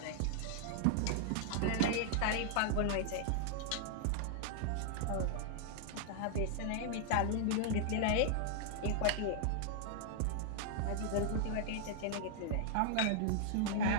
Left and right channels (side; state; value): both; different; correlation -0.01